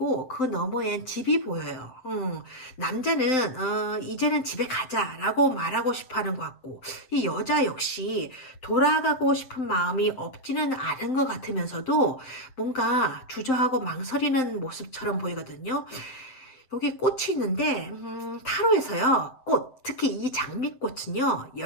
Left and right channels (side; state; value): right; late; 7.7 ms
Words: 그 너머엔 집이 보여요. 남자는 이제는 집에 가자라고 말하고 싶어하는 것 같고, 이 여자 역시 돌아가고 싶은 마음이 없지는 않은 것 같으면서도 뭔가 주저하고 망설이는 모습처럼 보이거든요. 여기 꽃이 있는데 타로에서요, 꽃, 특히 이 장미꽃은요